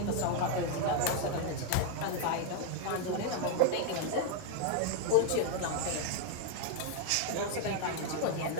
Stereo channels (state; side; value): different; both; correlation 0.00